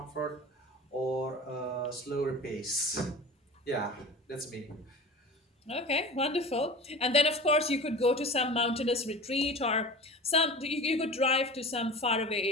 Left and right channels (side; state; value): both; normal; correlation 0.35